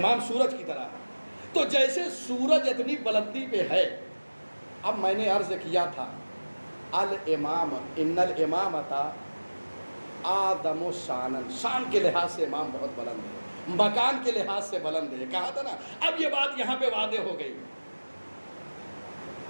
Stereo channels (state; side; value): inverted; both; correlation -1.00